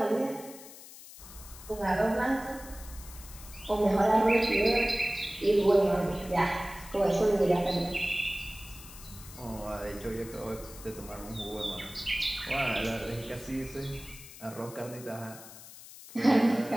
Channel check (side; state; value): left; noise; hiss, 16 dB below the sound